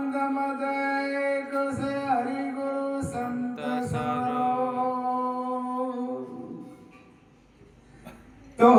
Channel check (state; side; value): identical; both; correlation 1.00